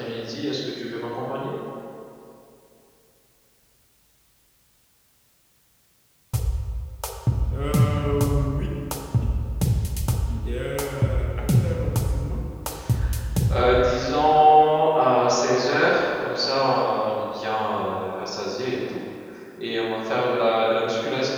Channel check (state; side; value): identical; both; correlation 1.00